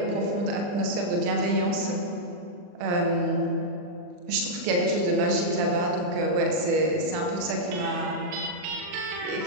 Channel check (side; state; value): left; late; 40 ms